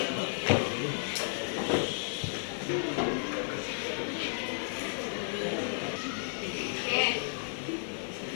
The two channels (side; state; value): right; silent; digital silence